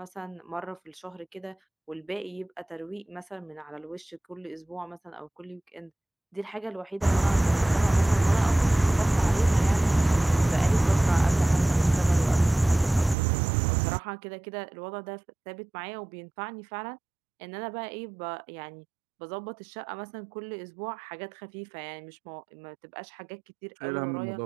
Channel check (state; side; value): drops out; left; at 13.2 s